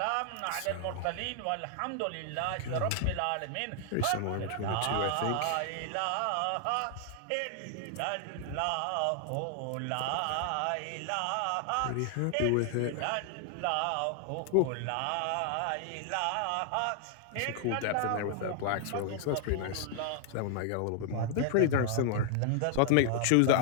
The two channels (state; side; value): different; both; correlation 0.00